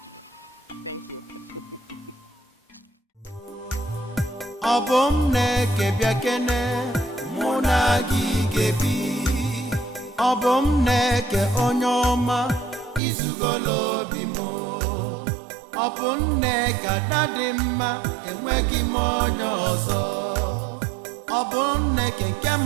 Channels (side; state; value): left; drops out; at 13.0 s